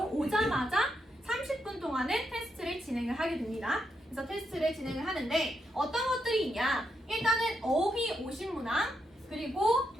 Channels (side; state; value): both; normal; correlation 0.81